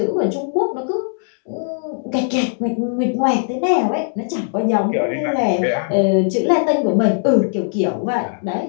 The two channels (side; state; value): right; silent; digital silence